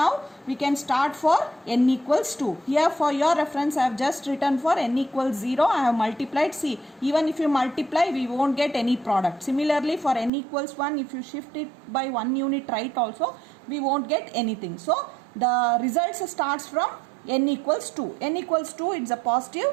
we can start for n equals 2. Here for your reference I have just written for n equals 0. I have multiplied. See, even if you multiply we won't get any product. Similarly for n equals 1, if you shift it by 1 unit right also, we won't get anything. So the results starts from n equals 2. n equals 2, it's a positive.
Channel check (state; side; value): drops out; left; at 10.3 s